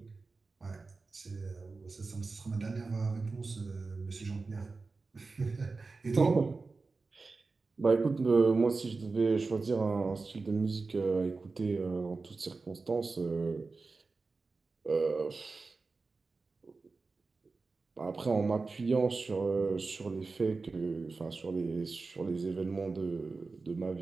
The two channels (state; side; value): quieter; left; 4.0 dB